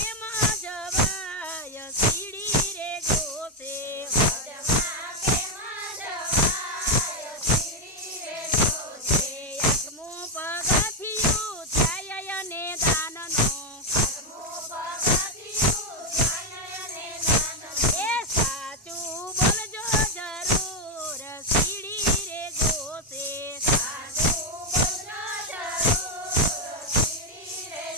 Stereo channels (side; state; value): both; normal; correlation 0.05